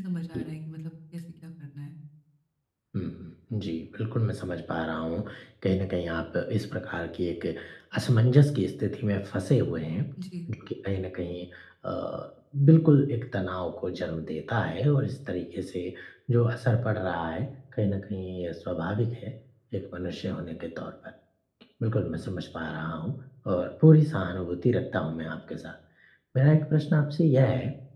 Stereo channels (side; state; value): both; identical; correlation 1.00